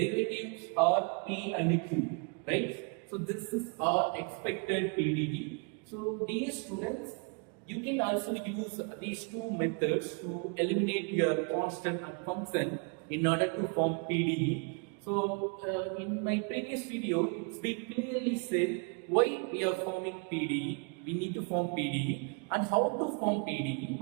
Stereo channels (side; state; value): left; quieter; 35.2 dB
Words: are p and q, right? So this is our expected PDE. So dear students, you can also use these two methods to eliminate your constant and function in order to form PDE. So in my previous video, it's been clearly said why we are forming PDE. We need to form PDE and how to form PDE.